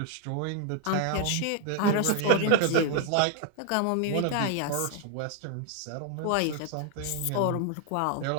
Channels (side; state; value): both; different; correlation 0.00